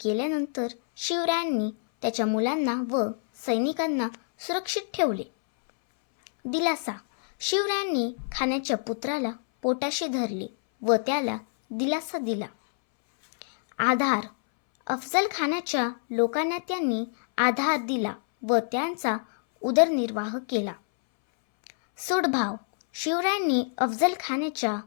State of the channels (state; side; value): silent; right; 60 dB below the other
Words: केल्यानंतर शिवरायांनी त्याच्या मुलांना व सैनिकांना सुरक्षित ठेवले. दिलासा. शिवरायांनी खानाच्या पुत्राला पोटाशी धरले व त्याला दिलासा दिला. आधार. अफजल खानाच्या लोकांना त्यांनी आधार दिला व त्यांचा उदरनिर्वाह केला. सूडभाव. शिवरायांनी अफजल खानाच्या